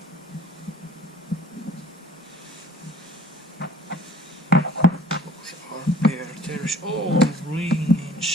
There is all ring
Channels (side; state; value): both; normal; correlation 0.52